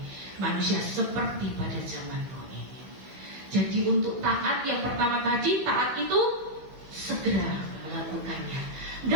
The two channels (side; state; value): left; late; 15 ms